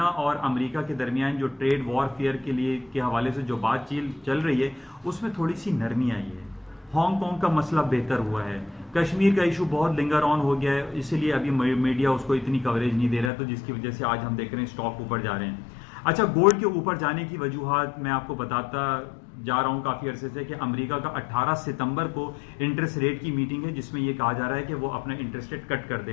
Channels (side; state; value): right; drops out; at 13.3 s